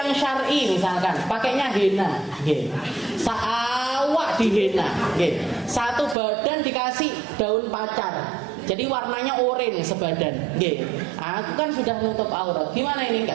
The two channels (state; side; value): drops out; left; at 6.2 s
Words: syar'i misalkan pakainya henna, saawak dihena, satu badan dikasih daun pacar, jadi warnanya oranye sebadan, aku kan sudah nutup aurat. Gimana ini?